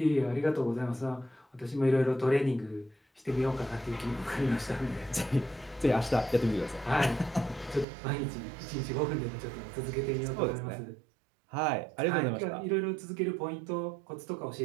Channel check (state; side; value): drops out; left; at 7.9 s